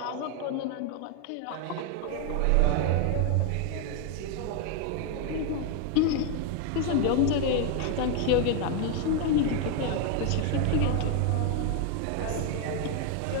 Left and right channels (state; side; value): different; both; correlation 0.01